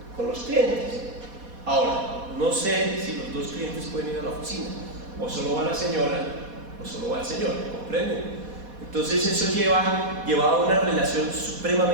con los clientes. Ahora, no sé si los 2 clientes pueden ir a la oficina, o solo va la señora, o solo va el señor, ¿comprenden? Entonces eso llevaba a una relación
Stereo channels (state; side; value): late; left; 4.2 ms